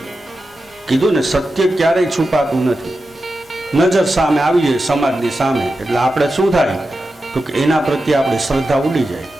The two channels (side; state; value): both; normal; correlation 0.91